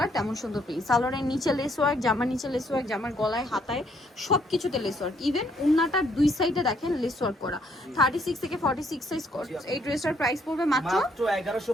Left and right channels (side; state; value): both; normal; correlation 0.69